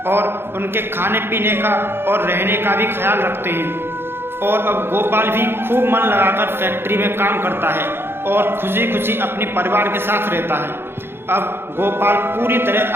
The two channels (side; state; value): left; late; 0.11 ms